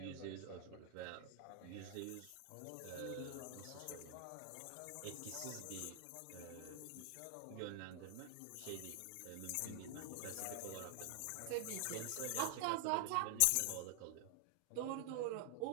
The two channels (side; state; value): both; different; correlation 0.00